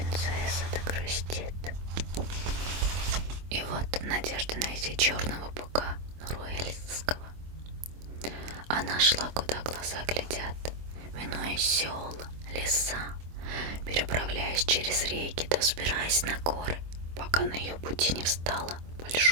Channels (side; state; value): left; late; 24 ms